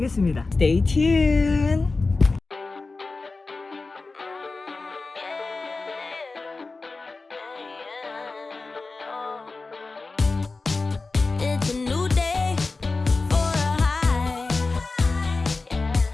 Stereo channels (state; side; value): quieter; right; 3.7 dB